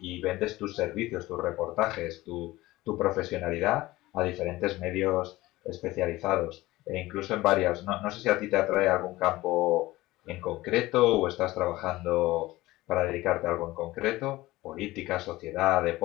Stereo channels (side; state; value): right; quieter; 18.4 dB